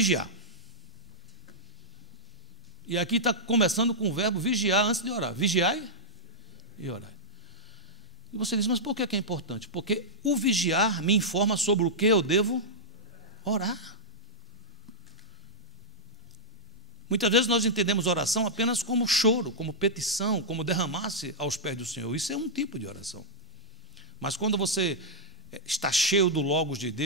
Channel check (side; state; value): both; normal; correlation -0.08